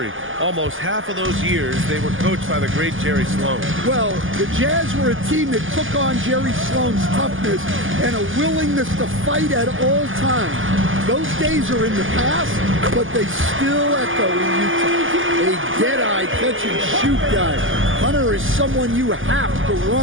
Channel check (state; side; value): late; left; 0.58 ms